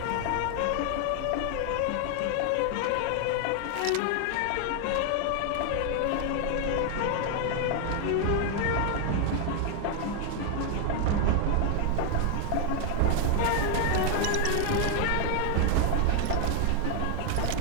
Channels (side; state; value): both; different; correlation 0.00